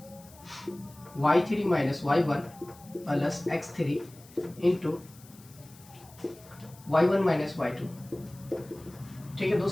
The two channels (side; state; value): left; noise; hiss, 23 dB below the sound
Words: y3 minus y1 plus x3 into y1 minus y2, ठीक है